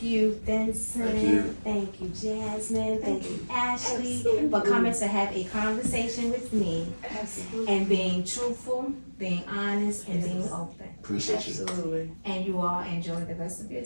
you, Vincent. Thank you. Thank you, Jasmine. Thank you, Ashley, for coming to have a conversation with me Absolutely. and being truthful, being honest, and being open. Appreciate you. Absolutely. And you all enjoy the rest of your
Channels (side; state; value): both; inverted; correlation -1.00